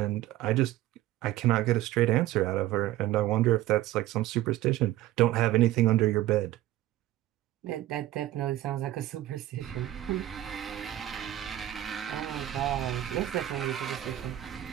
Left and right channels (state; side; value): quieter; left; 14.5 dB